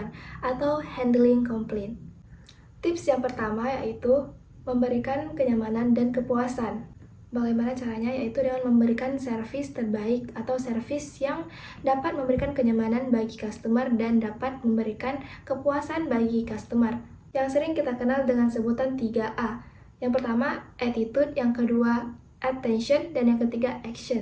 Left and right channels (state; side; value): identical; both; correlation 1.00